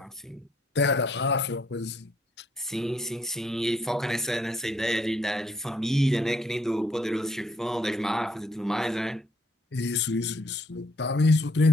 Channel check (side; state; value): both; normal; correlation 0.69